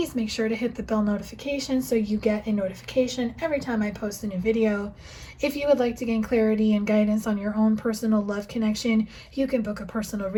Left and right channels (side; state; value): both; identical; correlation 1.00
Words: make sure to hit the bell notification so you get a notification every time I post a new video. If you would like to gain clarity and guidance on your own personal love connection, you can book a personal